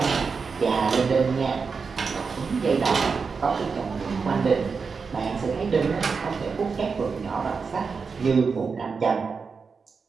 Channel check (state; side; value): quieter; left; 5.1 dB